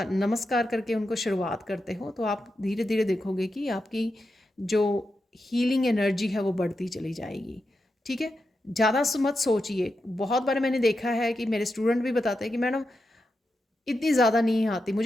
नमस्कार करके उनको शुरुआत करते हो, तो आप धीरे धीरे देखोगे कि आपकी जो हीलिंग एनर्जी है वो बढ़ती चली जाएगी, ठीक है। ज़्यादा मत सोचिए। बहुत बार मैंने देखा है कि मेरे स्टूडेंट भी बताते हैं कि मैडम इतनी ज़्यादा नहीं आती,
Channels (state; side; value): normal; both; correlation 0.88